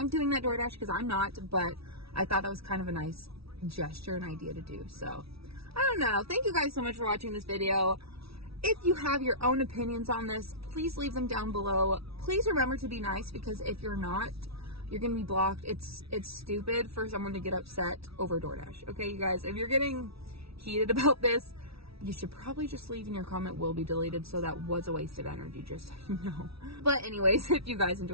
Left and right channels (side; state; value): left; late; 0.76 ms